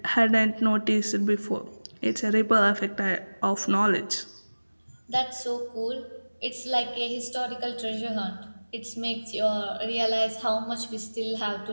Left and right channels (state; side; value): inverted; both; correlation -1.00